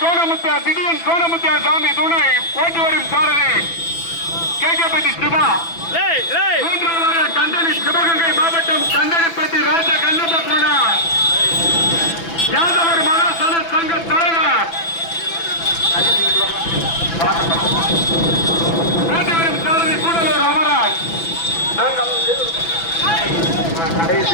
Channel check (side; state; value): right; late; 6.0 ms